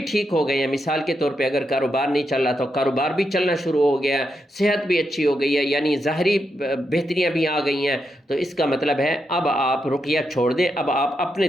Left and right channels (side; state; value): both; normal; correlation 0.84